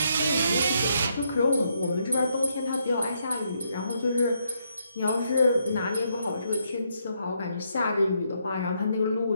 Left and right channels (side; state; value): both; inverted; correlation -0.76